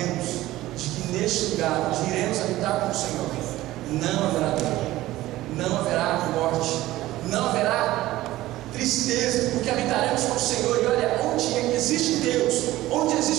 de que neste lugar onde iremos habitar com o Senhor, não haverá dor, não haverá morte, não haverá tristeza, porque habitaremos com o Senhor. E olha, onde existe Deus, onde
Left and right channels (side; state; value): left; quieter; 16.3 dB